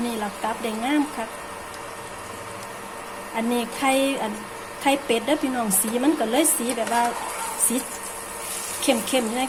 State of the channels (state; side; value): identical; both; correlation 1.00